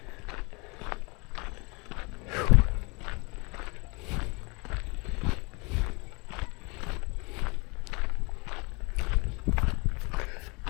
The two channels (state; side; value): quieter; right; 29.1 dB